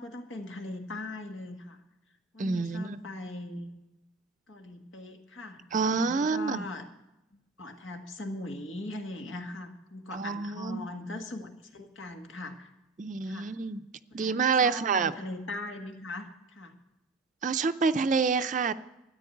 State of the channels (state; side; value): quieter; left; 3.8 dB